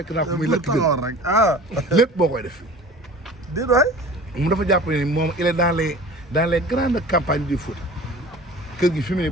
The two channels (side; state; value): both; normal; correlation 0.42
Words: naa ko muy lekk taxawoon rek lépp boo koy def. déedéet waay. mu dafa jàpp ne moom il est dans les grandes campagnes du foot. kër gi fi mu ne